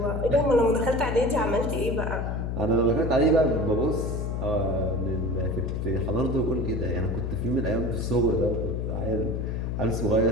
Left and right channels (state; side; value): noise; left; hum, 2 dB below the sound